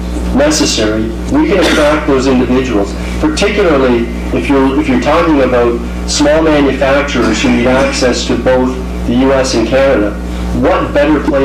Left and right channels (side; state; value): both; identical; correlation 1.00